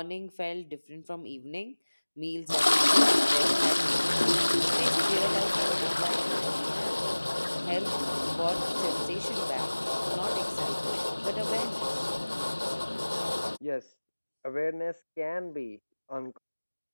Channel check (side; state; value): both; inverted; correlation -1.00